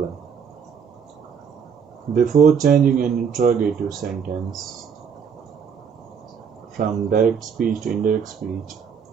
Before changing an interrogative sentence from direct speech to indirect speech,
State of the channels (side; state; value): left; quieter; 6.7 dB